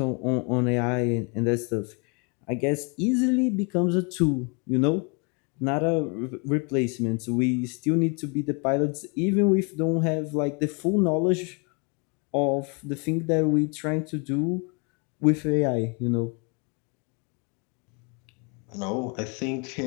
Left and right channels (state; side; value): quieter; right; 34.1 dB